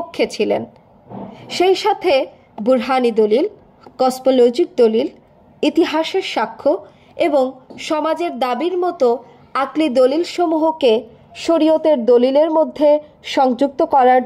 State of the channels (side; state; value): both; identical; correlation 1.00